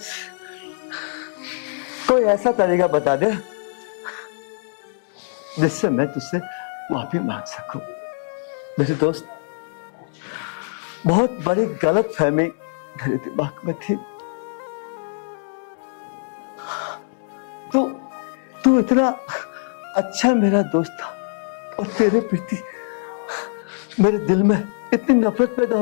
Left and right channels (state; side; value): silent; right; 63 dB below the other